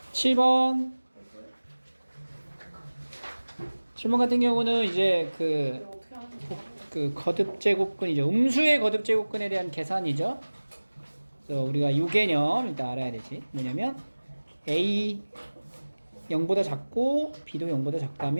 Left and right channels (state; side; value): inverted; both; correlation -1.00